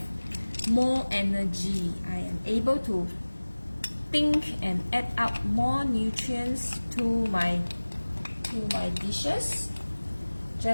more energy. I am able to think and add up more nutrients to my dishes,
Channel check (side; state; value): both; inverted; correlation -1.00